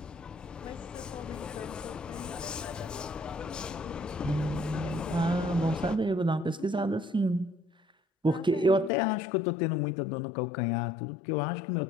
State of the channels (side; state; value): right; drops out; at 8.9 s